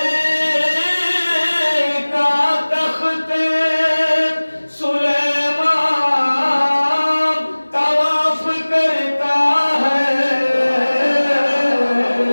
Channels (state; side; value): inverted; both; correlation -1.00